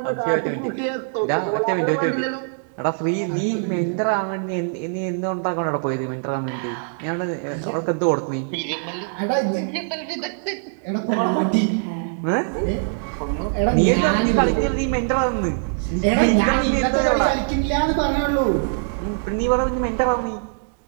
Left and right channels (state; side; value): silent; left; digital silence